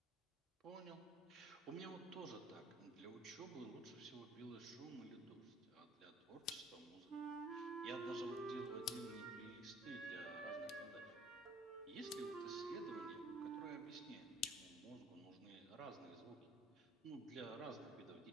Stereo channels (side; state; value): both; normal; correlation 0.53